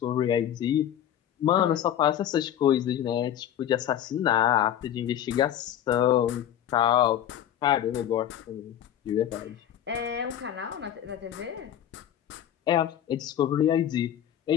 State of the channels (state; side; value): quieter; right; 10.7 dB